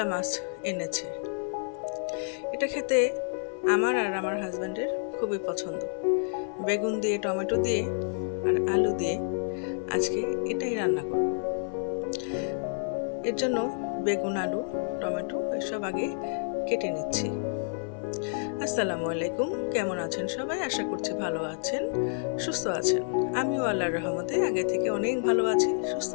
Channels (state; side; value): silent; right; 58 dB below the other